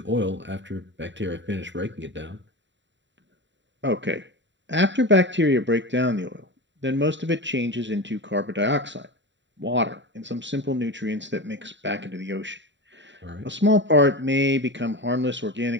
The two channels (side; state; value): left; late; 0.53 ms